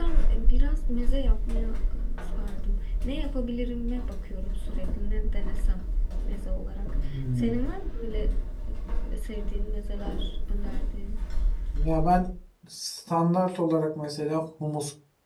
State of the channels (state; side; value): identical; both; correlation 1.00